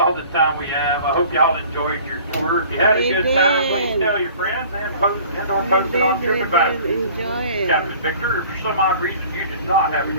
the time we have. I hope y'all enjoyed your tour. If you had a good time, please tell your friends and post it on TripAdvisor. Enjoy it. Captain Victor, if for some odd reason you did not have a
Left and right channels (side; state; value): both; inverted; correlation -0.48